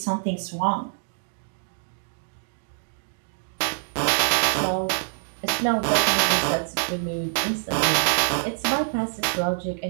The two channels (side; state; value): left; silent; digital silence